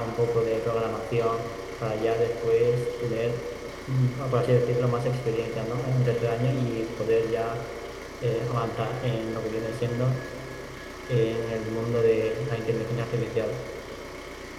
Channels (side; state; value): both; identical; correlation 1.00